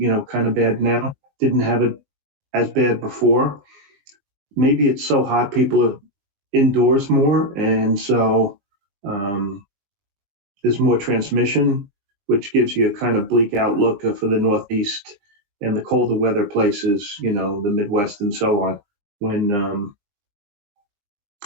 kind of bad now didn't have it as bad before. Maybe it's so hot, people are indoors more. And so there's more transmission, which gives you a kind of bleak outlook for the Northeast and the colder weather places, the Midwest and so on, when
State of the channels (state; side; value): late; left; 20 ms